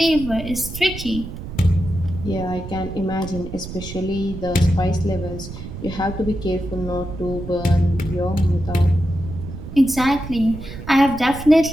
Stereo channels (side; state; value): right; noise; rumble, 10 dB below the sound